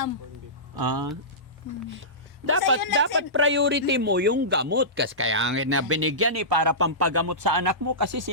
Dapat priority mo yung gamot kasi kaya na binigyan para pampagamot sa anak mo kasi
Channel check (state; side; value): normal; both; correlation -0.19